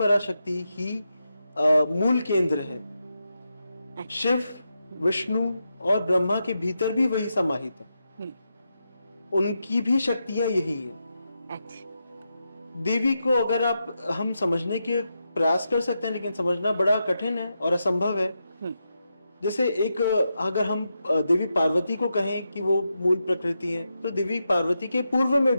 ही मूल केंद्र है। शिव, विष्णु और ब्रह्मा के भीतर भी वही समाहित है। उनकी भी शक्तियां यही है। देवी को अगर हम समझने के प्रयास कर सकते हैं, लेकिन समझना बड़ा कठिन है और असंभव है। जैसे अगर हम देवी पार्वती को कहें कि वो मूल प्रकृति है, तो देवी पार्वती के पूर्व में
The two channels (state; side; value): inverted; both; correlation -0.86